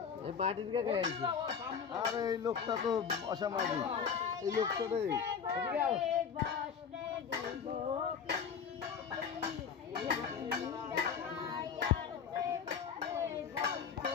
এই পার্টির কে কে আইছে আরে এই লোকটা তো অসামাজিক এই লোকটা রে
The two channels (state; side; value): quieter; right; 6.8 dB